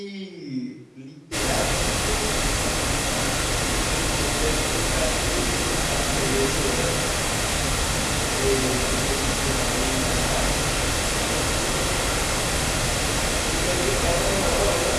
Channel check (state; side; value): identical; both; correlation 1.00